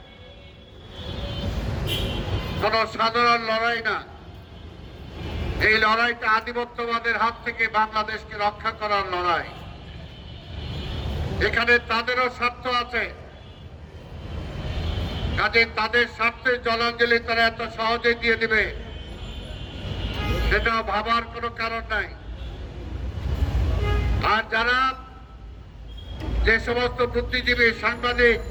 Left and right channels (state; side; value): identical; both; correlation 1.00